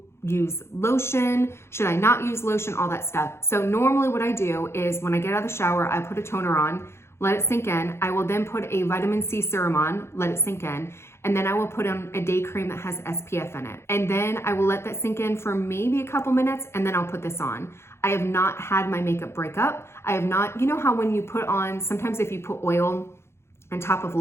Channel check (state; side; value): late; right; 0.12 ms